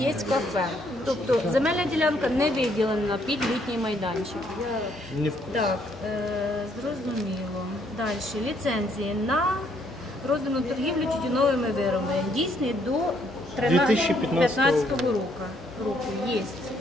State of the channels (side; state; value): both; normal; correlation 0.69